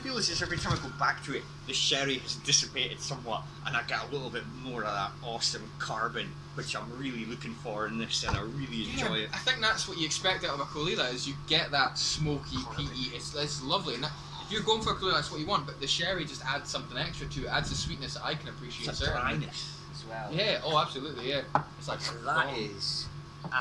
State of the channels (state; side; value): identical; both; correlation 1.00